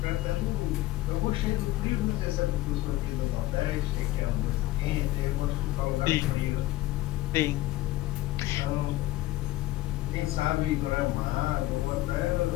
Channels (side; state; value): right; quieter; 17.0 dB